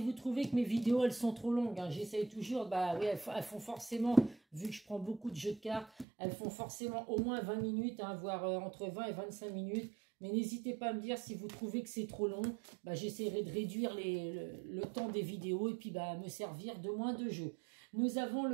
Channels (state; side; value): drops out; left; at 6.1 s